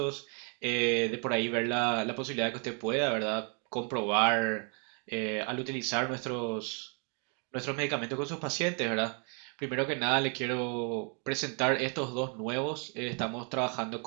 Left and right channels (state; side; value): quieter; left; 38.2 dB